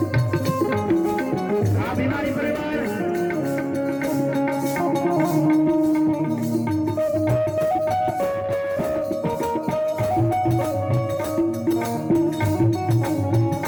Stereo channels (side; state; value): both; identical; correlation 1.00